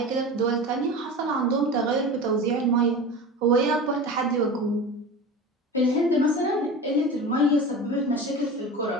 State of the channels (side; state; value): both; normal; correlation 0.31